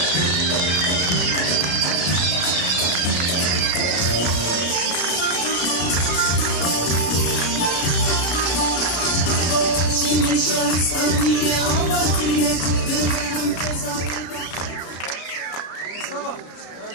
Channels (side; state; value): right; late; 33 ms